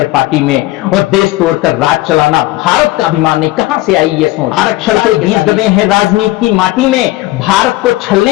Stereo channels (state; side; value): quieter; right; 18.3 dB